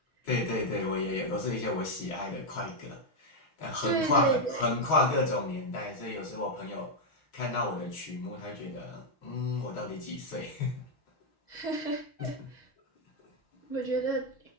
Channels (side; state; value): right; late; 6.3 ms